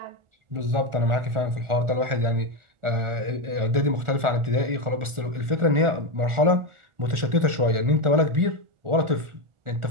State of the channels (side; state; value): left; late; 1.4 ms